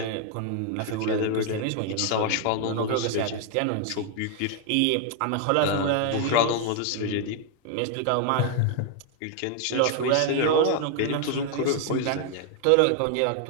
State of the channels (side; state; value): both; different; correlation 0.00